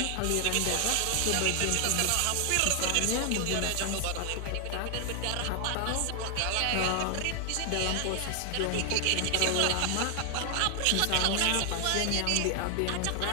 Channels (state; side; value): different; both; correlation 0.00